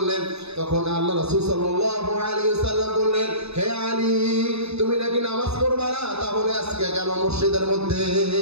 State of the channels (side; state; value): left; late; 0.79 ms